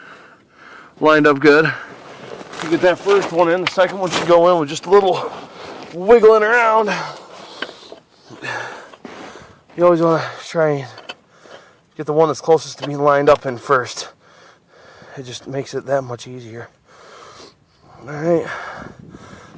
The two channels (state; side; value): identical; both; correlation 1.00